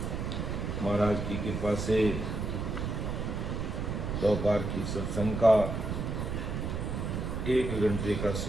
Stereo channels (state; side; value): noise; right; rumble, 3 dB below the sound